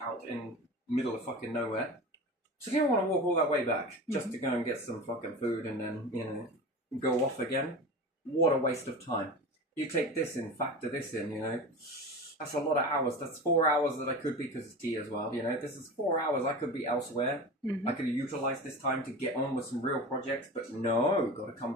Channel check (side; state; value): both; normal; correlation 0.30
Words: in middle of fucking nowhere. So you don't want to walk all that way back just to go and get some fucking food and then, go off again. What a waste of time. You take this in, factor this in, That's a lot of hours. That's 4 hours that I could be, because it's tea as well, This is 4 hours I could be elsewhere. I could have utilized this time to get on with some real projects, but no, got to come